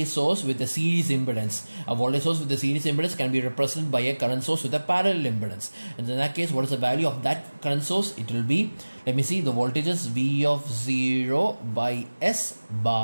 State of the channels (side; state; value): both; inverted; correlation -1.00